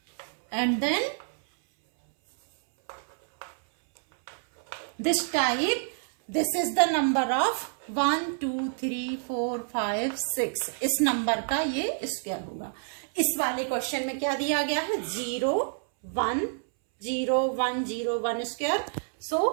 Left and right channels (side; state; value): left; silent; 59 dB below the other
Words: and then this type, this is the number of 1 2 3 4 5 6, इस number का ये square होगा। इस वाले question में क्या दिया गया है? 0 1 0 1 0 1 square. So